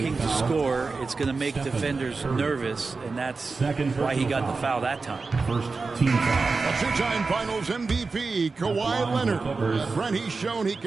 to score. It's going to make defenders nervous, and that's why he got the foul that time. First team foul. A two-time Finals MVP, Kawhi Leonard. Brent, he's shown he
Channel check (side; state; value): left; quieter; 4.2 dB